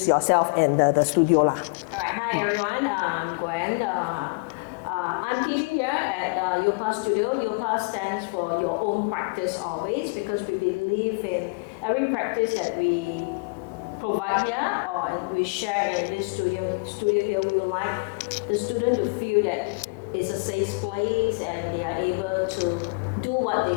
yourself and the studio lah. All right. Hi everyone. I'm Gwen. I'm teaching here at Yopa Studio. Yopa stands for Your Own Practice Always, because we believe in every practice that we provide here or we share in this studio here. We would like the student to feel that it's a safe place and they are able to do what they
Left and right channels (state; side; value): quieter; right; 33.7 dB